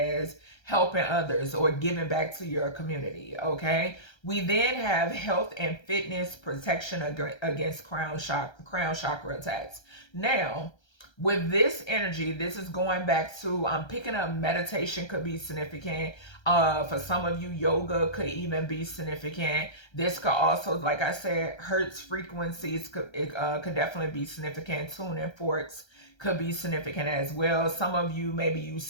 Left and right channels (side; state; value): right; late; 1.3 ms